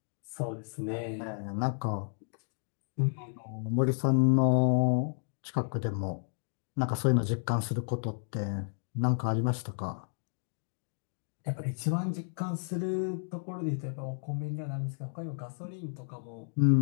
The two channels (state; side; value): silent; right; digital silence